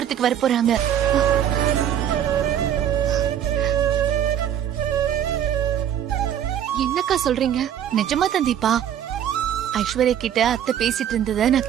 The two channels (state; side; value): quieter; left; 9.9 dB